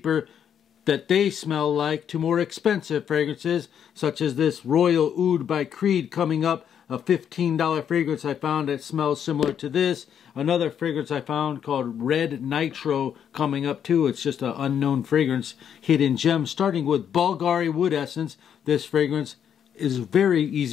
that they smell like to more expensive fragrances, such as this Royal Oud by Creed coming up, a $15 fragrance I found that smells similar to this. Another fragrance I found called Red Nitro coming up too. It's just an unknown fragrance, hidden gem, starting with Bulgari wood essence. This fragrance is very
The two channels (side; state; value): right; quieter; 8.6 dB